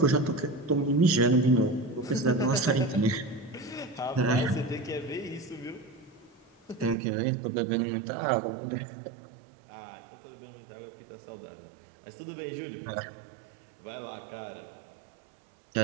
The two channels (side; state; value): left; drops out; at 7.0 s